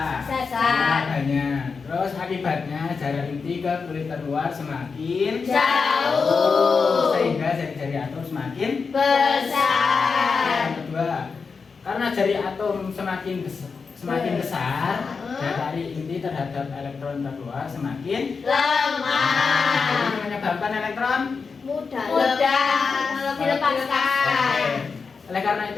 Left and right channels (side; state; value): right; quieter; 5.1 dB